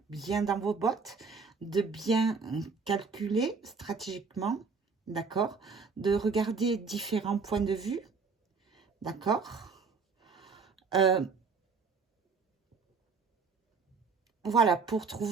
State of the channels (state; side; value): quieter; left; 4.9 dB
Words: bien dans vos bottes, de bien calculer stratégiquement, d'accord, de regarder différents points de vue, d'accord. Voilà, pour